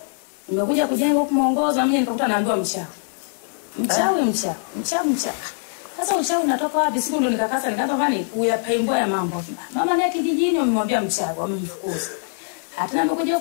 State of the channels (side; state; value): right; silent; digital silence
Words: Nimekuja kujenga huko muongozo mimi nikakuta naambiwa mchawi. Sasa uchawi unatoka wapi? Siku ndo nikakasa nikaanza fani kuyapaimbwa ya mambo. Mama ni kijijini wamemwambia mchawi wamemfukuza. Hata nimekuja